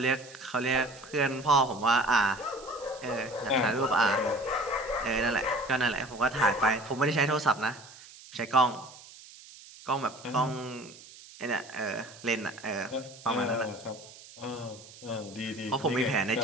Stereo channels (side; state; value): right; noise; hiss, 19 dB below the sound